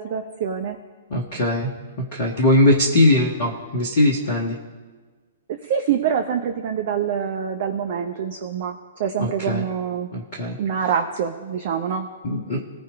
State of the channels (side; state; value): both; inverted; correlation -0.38